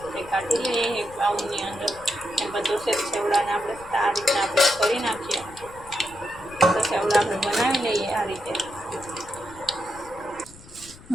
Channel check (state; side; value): noise; left; rumble, 20 dB below the sound